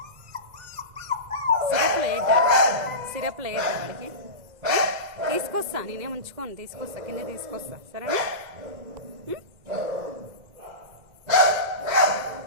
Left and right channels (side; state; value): left; late; 2.0 ms